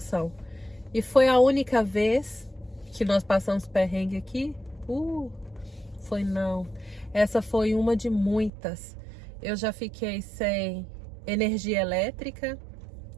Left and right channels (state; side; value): drops out; left; at 8.5 s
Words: E foi a única vez que nós passamos perrengue aqui? Foi não. Essa foi uma de muitas. Eu já fiquei sem energia elétrica,